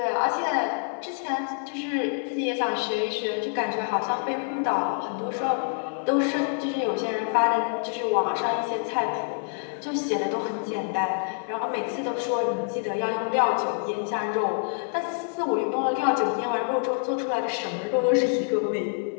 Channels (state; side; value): silent; right; 59 dB below the other